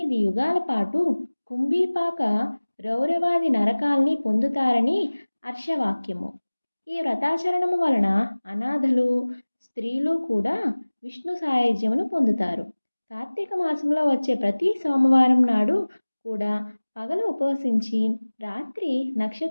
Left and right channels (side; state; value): both; inverted; correlation -1.00